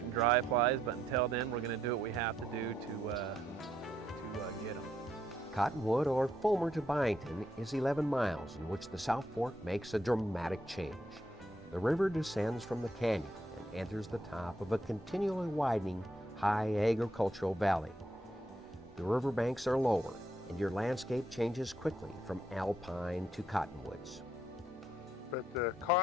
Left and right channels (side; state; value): both; normal; correlation 0.75